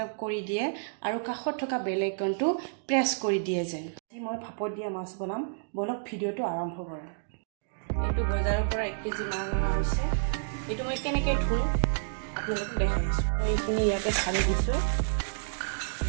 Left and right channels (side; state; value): left; silent; digital silence